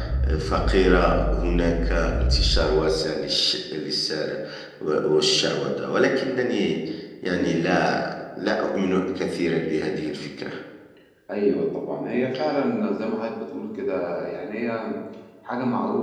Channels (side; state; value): both; identical; correlation 1.00